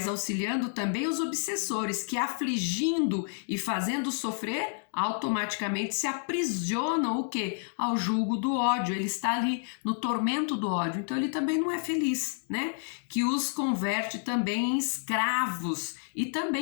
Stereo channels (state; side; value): silent; right; 58 dB below the other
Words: auxiliando também os obsessores, que afligindo e fazendo sofrer, automaticamente se aprisionam o quê? Ao jugo do ódio. Ele está ali no tormento do ódio, então ele também não é feliz, né? Que os converte também em escravos e